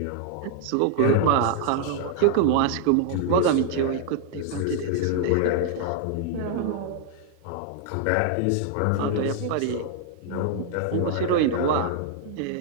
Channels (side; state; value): both; different; correlation 0.00